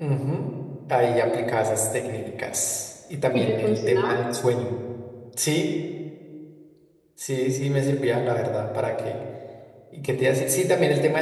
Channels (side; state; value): both; identical; correlation 1.00